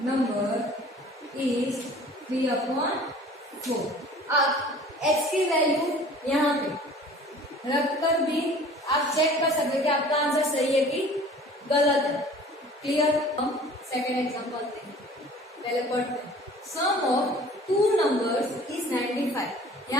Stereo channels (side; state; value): both; normal; correlation 0.47